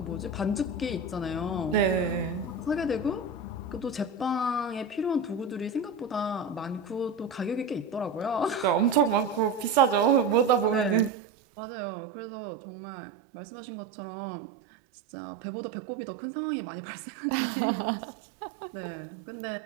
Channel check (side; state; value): left; drops out; at 11.1 s